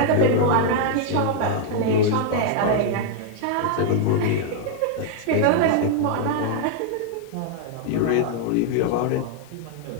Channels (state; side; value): different; both; correlation 0.00